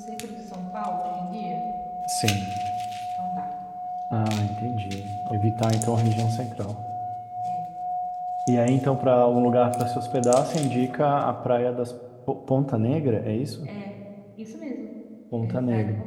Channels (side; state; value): both; identical; correlation 1.00